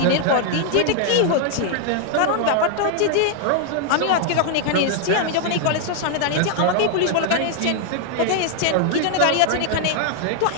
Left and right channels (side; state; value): both; different; correlation 0.00